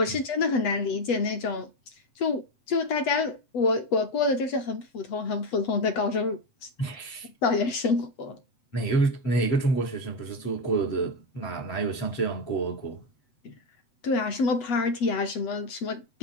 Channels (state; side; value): late; right; 8.2 ms